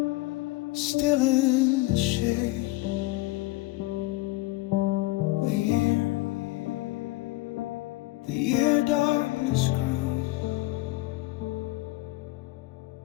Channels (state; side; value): quieter; right; 20.0 dB